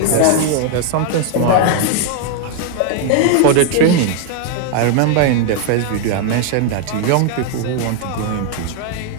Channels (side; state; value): both; different; correlation 0.00